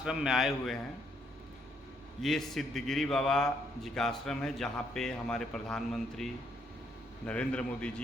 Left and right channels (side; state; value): both; normal; correlation 0.72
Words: में आए हुए हैं ये सिद्धगिरी बाबा जी का आश्रम है, जहाँ पे हमारे प्रधानमंत्री नरेंद्र मोदी